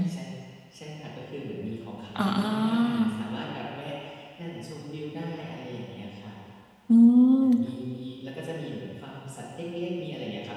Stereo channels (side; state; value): both; identical; correlation 1.00